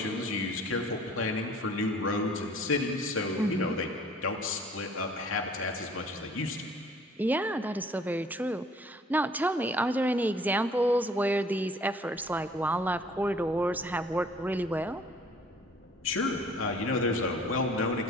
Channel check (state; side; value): normal; both; correlation 0.54